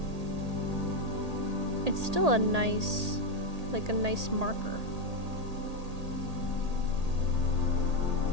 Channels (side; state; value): left; late; 1.8 ms